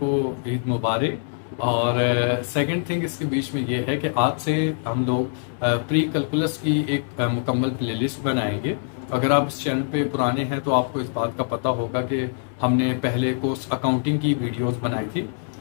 ईद मुबारक। और सेकंड थिंग इसके बीच में ये है कि आज से हम लोग प्री कैलकुलस की एक मुकम्मल प्लेलिस्ट बनाएंगे। अगर आप इस चैनल पे पुराने हैं तो आपको इस बात का पता होगा कि हमने पहले कोर्स अकाउंटिंग की वीडियोस बनाई थी,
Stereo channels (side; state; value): right; silent; digital silence